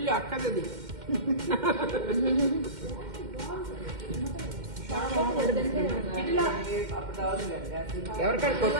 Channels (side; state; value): left; late; 2.1 ms